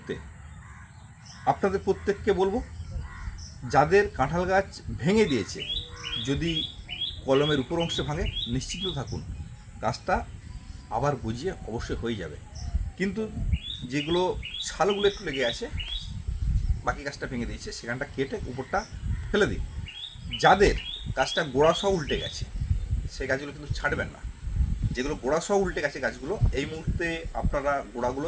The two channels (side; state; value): both; identical; correlation 1.00